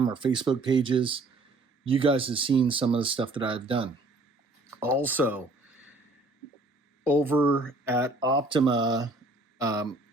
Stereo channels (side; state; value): left; quieter; 3.0 dB